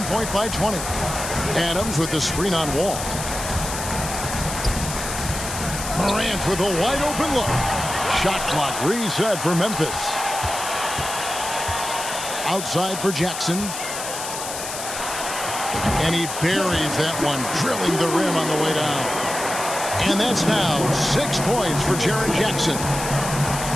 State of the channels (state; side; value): noise; left; hiss, 7 dB below the sound